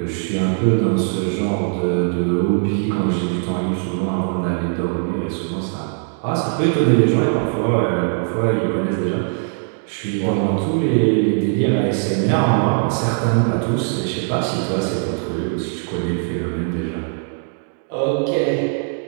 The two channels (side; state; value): left; silent; 56 dB below the other